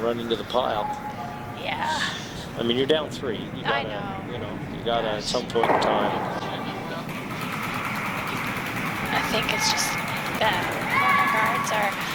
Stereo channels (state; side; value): identical; both; correlation 1.00